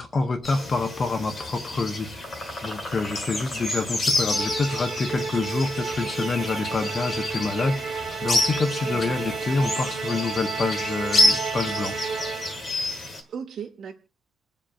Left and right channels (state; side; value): normal; both; correlation 0.84